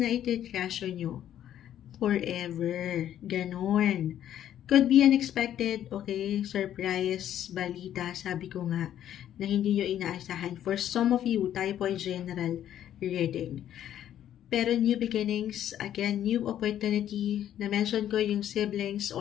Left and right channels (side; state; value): right; quieter; 11.0 dB